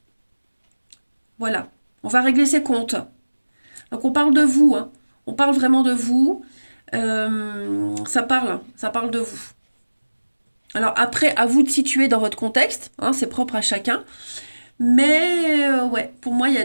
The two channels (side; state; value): both; inverted; correlation -1.00